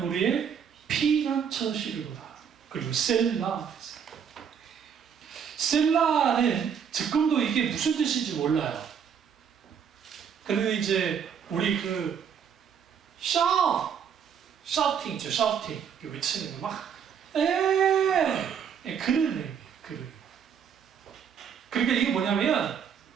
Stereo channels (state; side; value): quieter; left; 7.6 dB